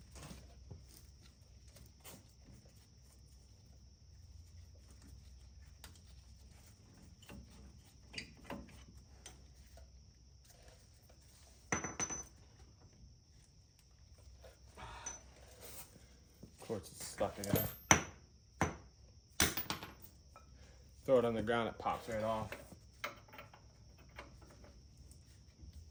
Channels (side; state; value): both; identical; correlation 1.00